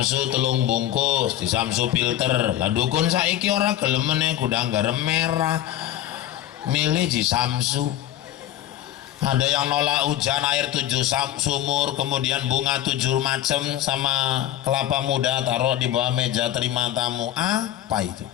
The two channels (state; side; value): quieter; right; 12.6 dB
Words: 3 bungkus, di Samsu filter. Lah dukun saiki ora gelem meneh gudang garam merah. Milih di Samsu. Ada yang nolak hujan air 7 sumur, kemudian bunga 7 macam sama kelapa muda taruh di bawah meja terima tamu. Apa itu?